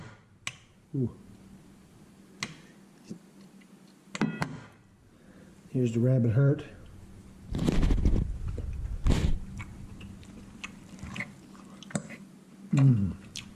Ooh. Here's the rabbit heart.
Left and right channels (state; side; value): identical; both; correlation 1.00